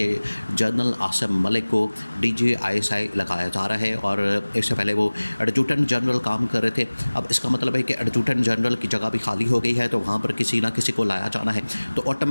जनरल आसिम मलिक को DGI लगाया जा रहा है। और इससे पहले वो एडजुटेंट जनरल काम कर रहे थे। अब इसका मतलब है कि एडजुटेंट जनरल की जगह भी खाली हो गई है, तो वहाँ पर किसी ना किसी को लाया जाना है। तो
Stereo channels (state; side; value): inverted; both; correlation -1.00